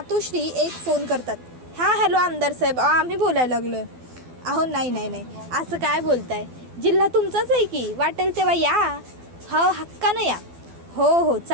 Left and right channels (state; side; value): late; left; 12 ms